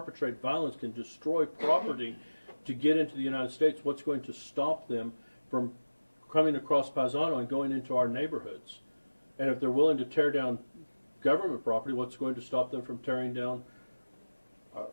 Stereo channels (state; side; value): inverted; both; correlation -1.00